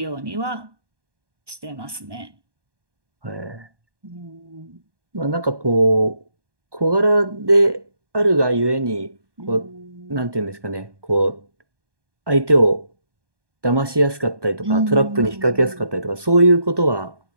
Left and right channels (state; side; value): late; left; 1.2 ms